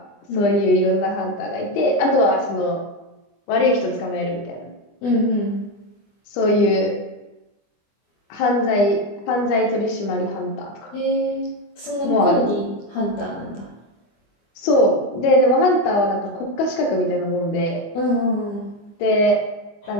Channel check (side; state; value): right; late; 24 ms